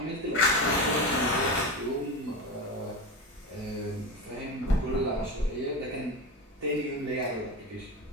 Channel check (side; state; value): both; normal; correlation 0.22